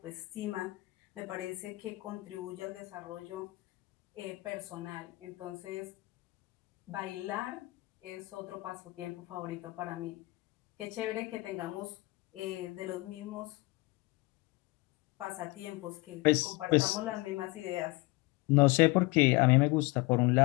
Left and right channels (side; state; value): right; quieter; 23.0 dB